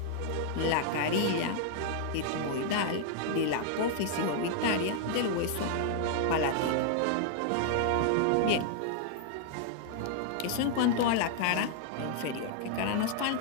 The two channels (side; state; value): both; different; correlation 0.00